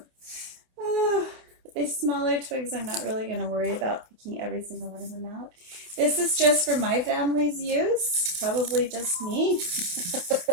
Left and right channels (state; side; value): late; left; 28 ms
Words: Oh, these smaller twigs, I'm not really going to worry about picking every single one of them out. This is just for my family's use. Probably just me.